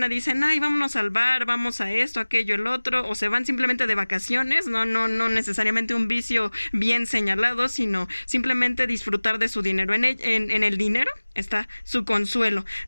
dicen: ay, vámonos al bar, vamos a esto, aquello, el otro, o se van simplemente de vacaciones, no necesariamente un vicio bien señalado, sino simplemente disfrutar de su dinero. En el dinero está su consuelo.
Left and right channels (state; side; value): inverted; both; correlation -1.00